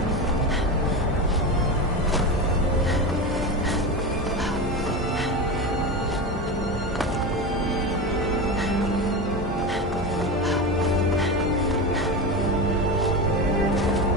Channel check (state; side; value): normal; both; correlation 0.21